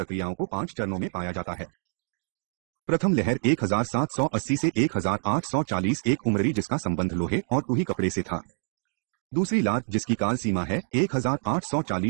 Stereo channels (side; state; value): left; silent; 60 dB below the other